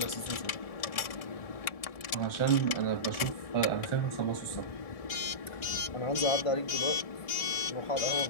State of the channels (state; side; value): late; right; 1.7 ms